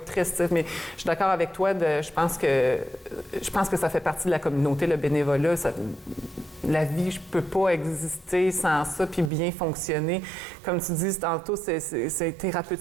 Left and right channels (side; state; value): left; drops out; at 9.3 s